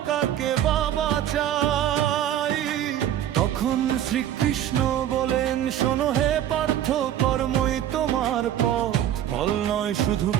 কাকে বাবা চাই। তখন শ্রীকৃষ্ণ বলেন, শোনো হে পার্থ, কর্মই তোমার পথ, ফল নয় শুধু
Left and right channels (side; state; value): left; quieter; 11.2 dB